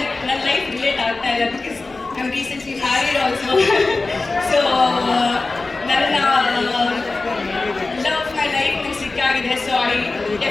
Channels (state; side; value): quieter; right; 3.5 dB